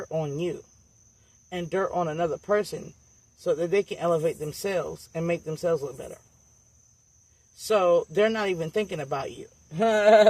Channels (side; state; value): both; identical; correlation 1.00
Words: on you and dirt on another person so that they can elevate themselves and make themselves look better. So, they're not even thinking about you.